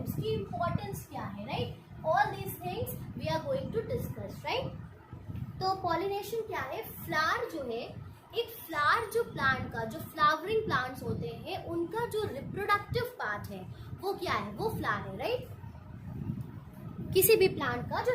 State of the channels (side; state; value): both; identical; correlation 1.00